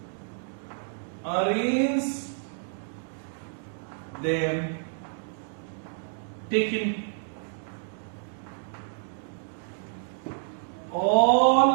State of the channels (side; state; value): left; silent; digital silence